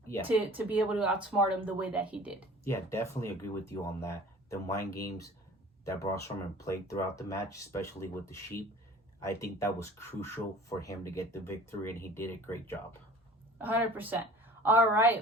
Yeah. To be able to outsmart him the way that he did. Yeah, definitely agree with you on that. The mind games that Braun Strowman played throughout the match, especially with the sheep, I think that was crucial for him to get the victory, and he did a great job. 100%. All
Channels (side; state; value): both; normal; correlation 0.45